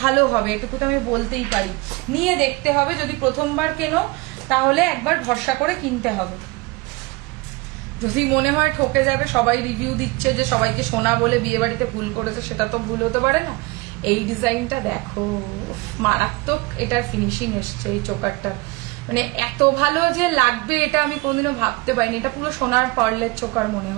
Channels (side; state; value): left; quieter; 24.1 dB